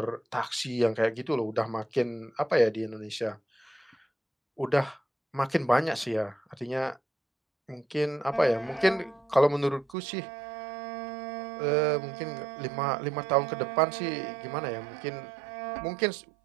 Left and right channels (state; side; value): drops out; left; at 10.0 s